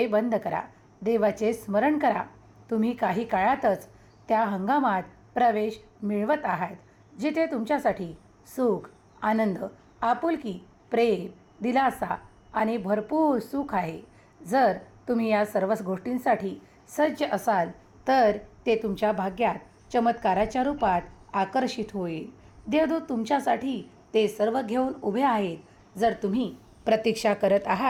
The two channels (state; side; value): identical; both; correlation 1.00